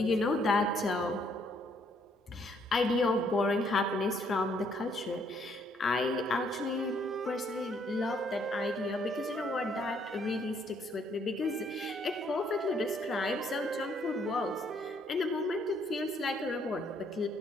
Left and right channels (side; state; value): both; normal; correlation 0.68